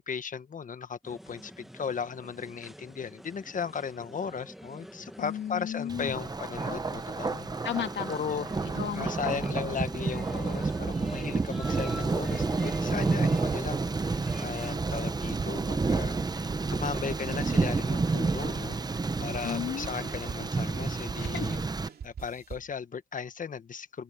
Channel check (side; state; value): both; normal; correlation 0.66